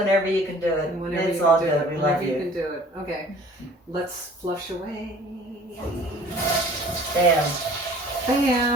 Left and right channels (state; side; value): normal; both; correlation 0.49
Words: you can do it. And whenever It's you all can do good. it. We Whenever love you you. can do it. Okay. Let's flush away. Bam.